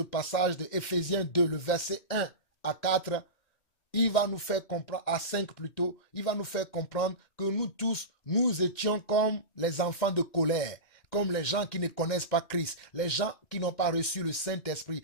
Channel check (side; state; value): right; late; 2.1 ms